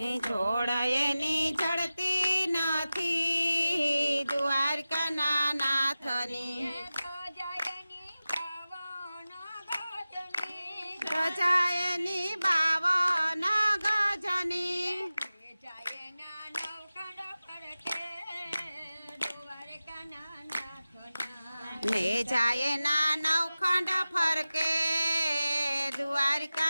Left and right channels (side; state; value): both; inverted; correlation -0.96